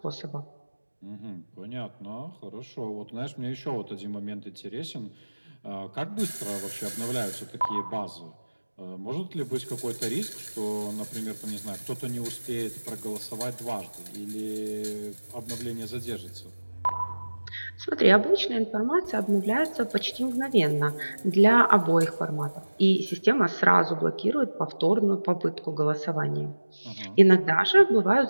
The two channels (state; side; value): inverted; both; correlation -1.00